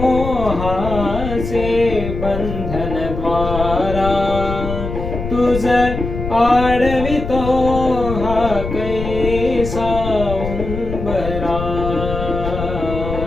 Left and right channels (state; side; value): noise; left; rumble, 6 dB below the sound